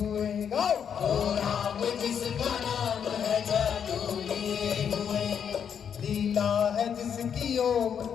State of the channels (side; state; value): right; quieter; 7.8 dB